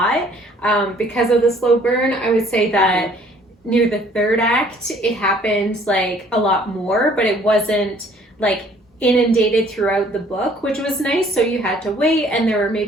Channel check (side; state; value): both; normal; correlation 0.58